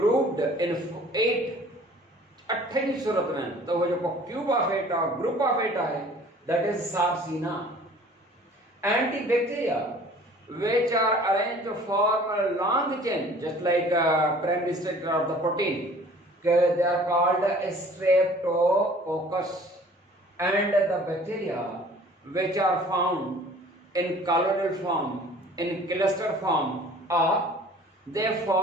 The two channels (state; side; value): normal; both; correlation 0.50